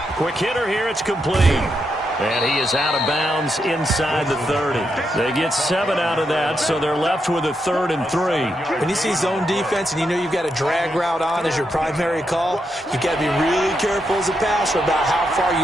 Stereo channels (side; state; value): both; normal; correlation 0.82